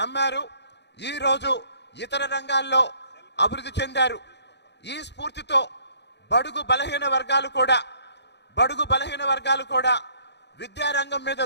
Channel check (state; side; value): late; right; 0.50 ms